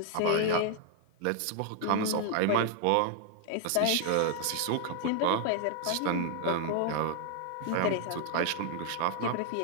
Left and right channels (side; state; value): both; different; correlation 0.00